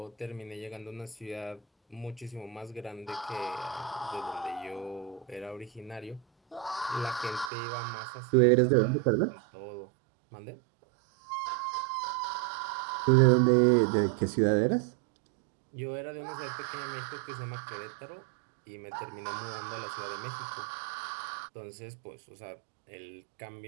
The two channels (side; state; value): left; drops out; at 7.5 s